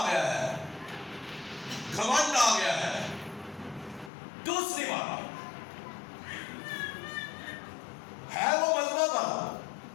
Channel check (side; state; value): right; drops out; at 4.1 s